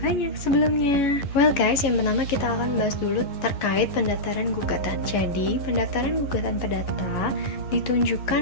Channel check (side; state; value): right; late; 11 ms